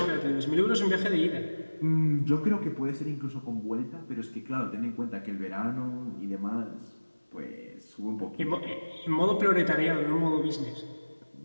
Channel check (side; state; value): both; inverted; correlation -1.00